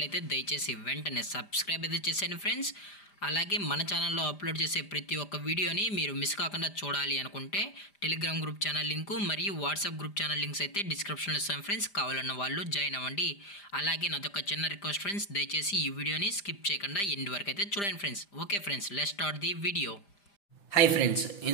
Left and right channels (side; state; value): right; late; 5.0 ms